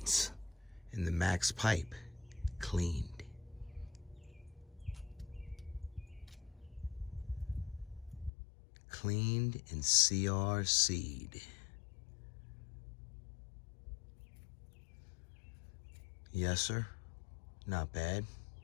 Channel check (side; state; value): right; drops out; at 8.3 s